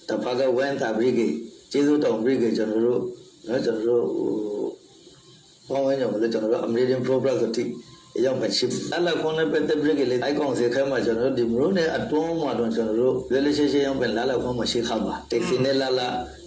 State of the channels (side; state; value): both; identical; correlation 1.00